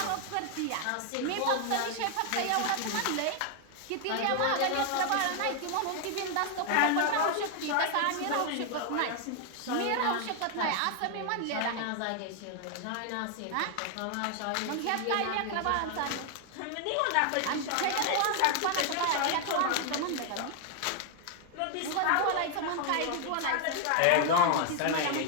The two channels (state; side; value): different; both; correlation 0.00